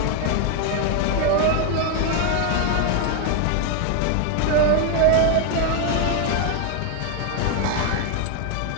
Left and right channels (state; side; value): different; both; correlation 0.00